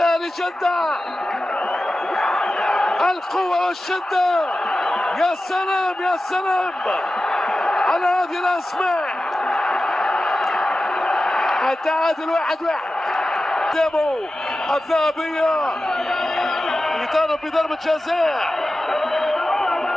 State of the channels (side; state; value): both; normal; correlation 0.94